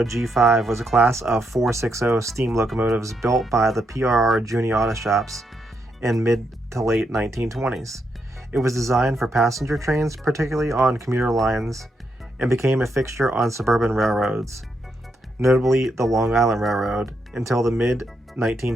G5 was a class of 460 steam locomotives built by the PRR Junior Auto Shops in mid to late 1920s. It was designed for passenger trains, particularly on commuter lines, and became a fixture on suburban railroads, notably the Long Island Railroad, until the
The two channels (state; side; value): normal; both; correlation 0.80